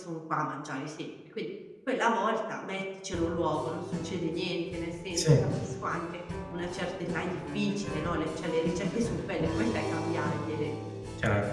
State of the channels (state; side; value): identical; both; correlation 1.00